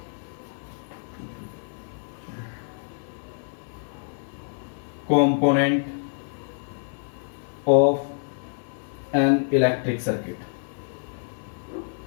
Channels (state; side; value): silent; right; 60 dB below the other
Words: component of an electric circuit.